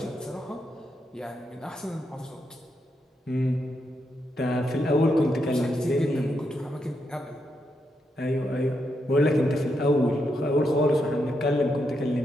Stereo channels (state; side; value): normal; both; correlation 0.82